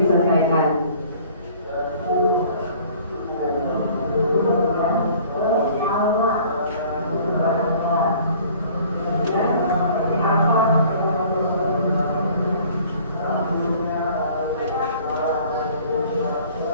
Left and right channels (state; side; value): inverted; both; correlation -0.52